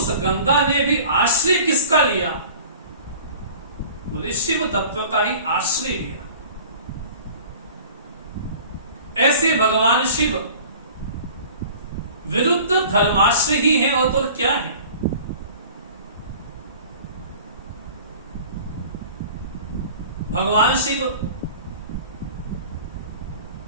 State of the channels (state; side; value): inverted; both; correlation -0.44